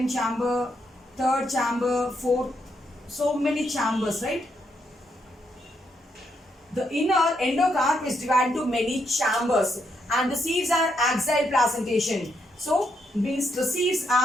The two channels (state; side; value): normal; both; correlation 0.78